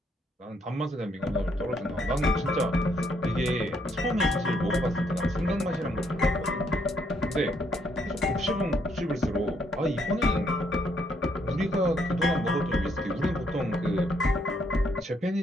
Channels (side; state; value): both; normal; correlation 0.72